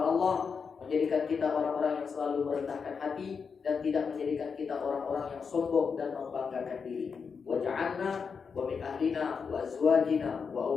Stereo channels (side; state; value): right; quieter; 5.8 dB